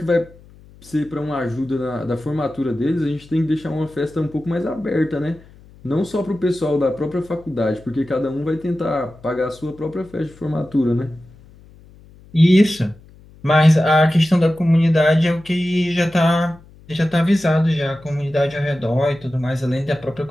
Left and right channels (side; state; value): left; noise; hum, 24 dB below the sound